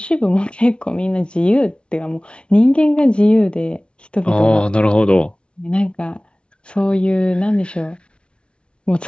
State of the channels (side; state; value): right; late; 0.058 ms